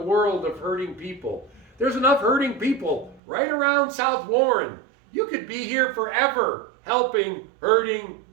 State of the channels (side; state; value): left; drops out; at 3.2 s